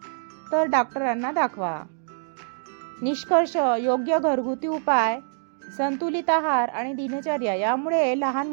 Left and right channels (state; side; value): silent; left; digital silence